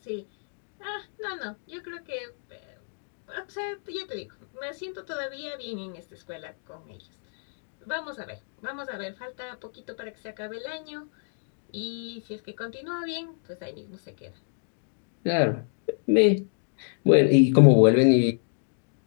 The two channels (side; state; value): right; silent; digital silence